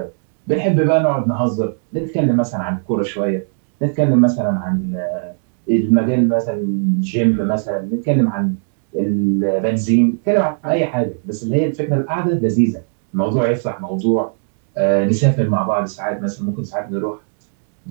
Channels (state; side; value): silent; left; digital silence